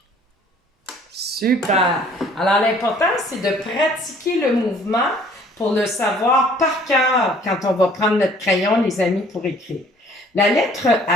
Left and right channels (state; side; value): normal; both; correlation 0.55